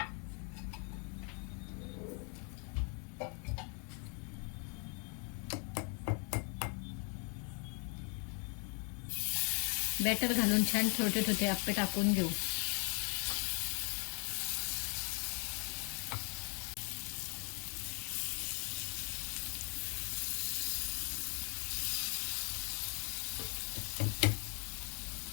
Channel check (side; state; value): right; quieter; 38.0 dB